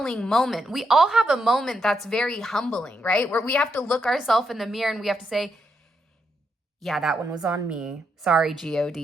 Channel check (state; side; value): normal; both; correlation 0.80